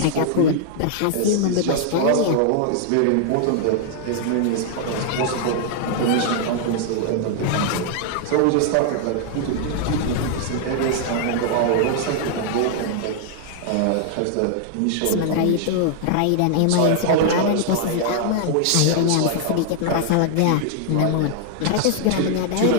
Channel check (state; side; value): different; both; correlation -0.01